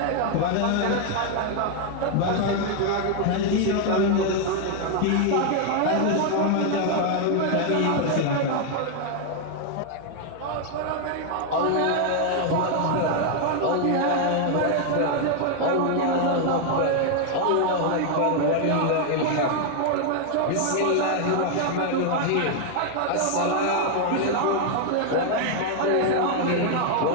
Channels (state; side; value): different; both; correlation 0.00